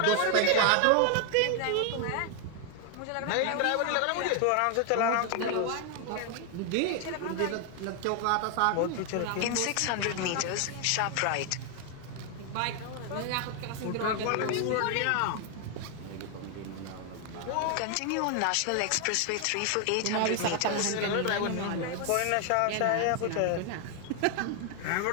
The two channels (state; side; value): different; both; correlation 0.00